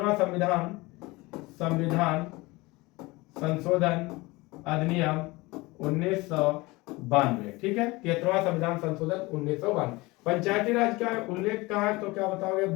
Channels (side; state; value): right; quieter; 22.5 dB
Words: संविधान संशोधन अधिनियम 1992, ठीक है। 73वां संविधान संशोधन 1992। पंचायती राज का उल्लेख कहाँ है, तो क्या बताओगे,